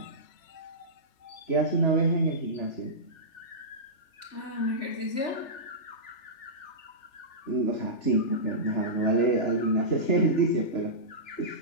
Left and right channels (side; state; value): right; late; 3.4 ms